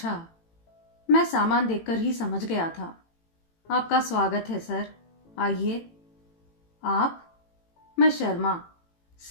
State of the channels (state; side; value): late; right; 18 ms